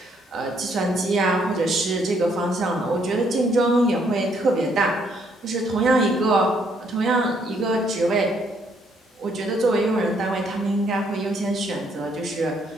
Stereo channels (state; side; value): normal; both; correlation 0.69